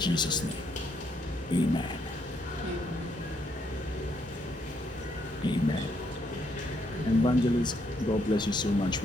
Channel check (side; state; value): both; normal; correlation 0.74